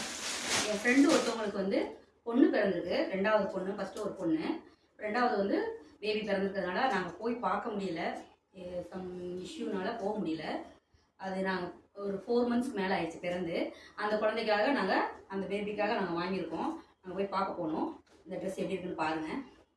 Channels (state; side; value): identical; both; correlation 1.00